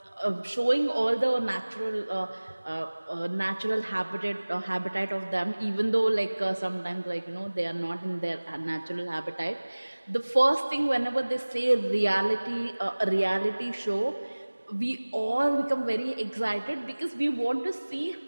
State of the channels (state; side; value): inverted; both; correlation -1.00